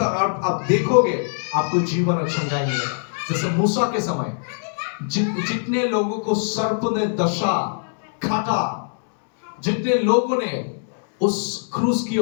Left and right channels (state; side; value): silent; right; 64 dB below the other